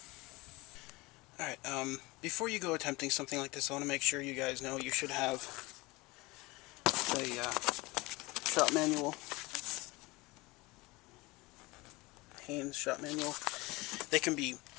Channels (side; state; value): right; quieter; 22.8 dB